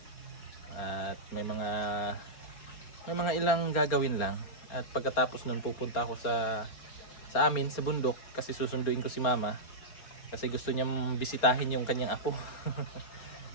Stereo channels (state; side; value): late; right; 4.4 ms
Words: At may mga ilang gagawin lang, at pagkatapos nun pupunta ako sa amin sa bundok kasi susunduin ko si Mama kasi gusto niyang bisitahin yung kanyang apo.